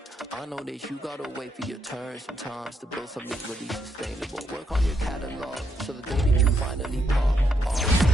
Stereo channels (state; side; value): normal; both; correlation 0.78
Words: I know that you gotta wait for your turn sometimes to build something really sustainable. Work on your catalog so the day that you finally pop